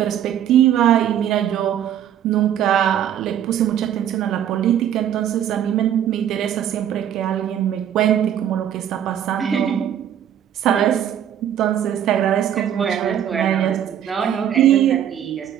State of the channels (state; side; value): quieter; left; 10.1 dB